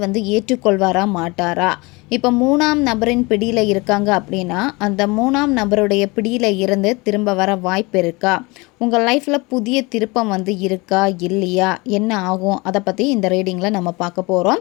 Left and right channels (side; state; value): right; quieter; 25.2 dB